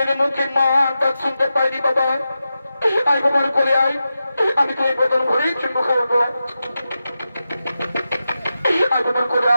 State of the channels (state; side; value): inverted; both; correlation -0.91